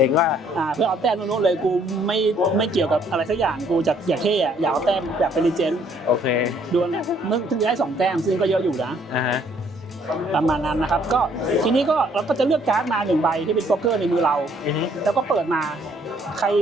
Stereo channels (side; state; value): both; normal; correlation 0.64